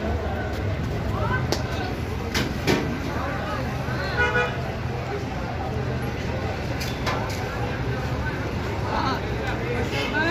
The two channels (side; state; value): both; identical; correlation 1.00